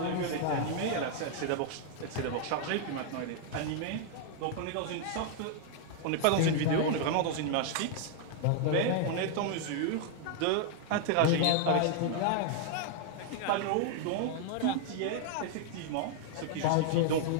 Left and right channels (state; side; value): different; both; correlation 0.00